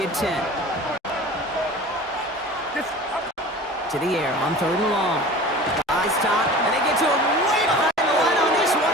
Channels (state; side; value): normal; both; correlation 0.39